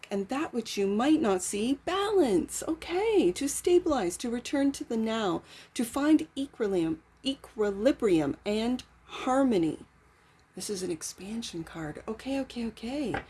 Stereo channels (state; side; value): identical; both; correlation 1.00